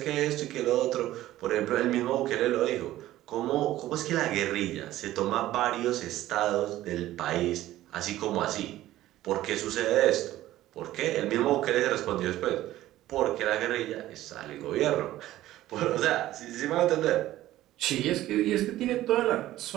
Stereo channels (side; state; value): left; quieter; 14.8 dB